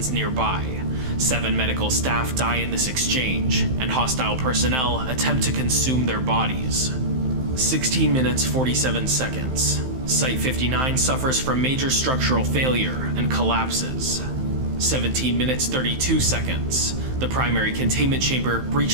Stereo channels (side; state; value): left; late; 15 ms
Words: nearby. 7 medical staff die in this exchange, and hostile personnel attempt to consume their bodies. 16 minutes 47 seconds. Site-59 suffers from major structural failure and collapses. 17 minutes 32 seconds. The primary containment chamber